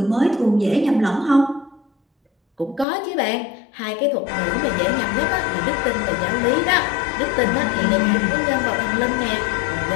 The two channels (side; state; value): right; drops out; at 2.9 s